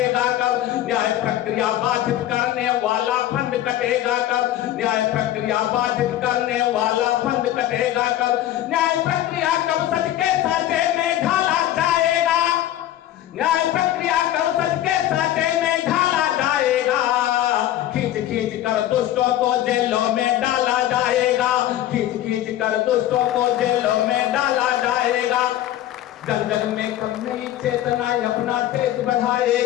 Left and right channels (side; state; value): right; quieter; 12.9 dB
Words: कब। न्याय प्रक्रिया बाधित करने वाला फंड कटेगा कब, न्याय प्रक्रिया बाधित करने वाला फंड कटेगा कब। न्याय प्रक्रिया कब सच के साँचे में ढाला जाएगा, न्याय प्रक्रिया कब सच के साँचे में ढाला जाएगा। खींच खींच कर दुष्टों को जेलों में डाला जाएगा, खींच खींच कर दुष्टों को जेलों में डाला जाएगा। जन जन में कब नई चेतना अपना तेज